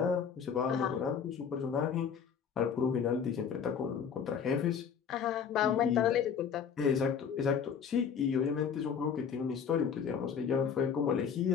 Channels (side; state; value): right; quieter; 7.2 dB